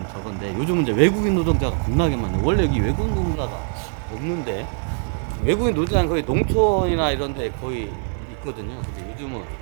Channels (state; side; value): silent; left; 55 dB below the other